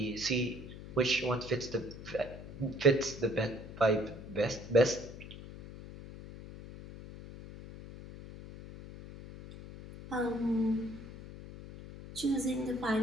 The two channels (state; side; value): noise; left; hum, 13 dB below the sound